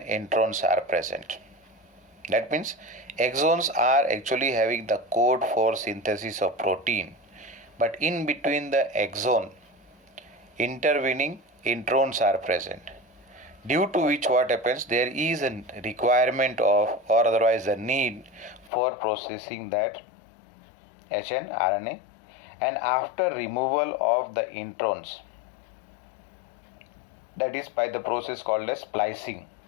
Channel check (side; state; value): right; drops out; at 18.7 s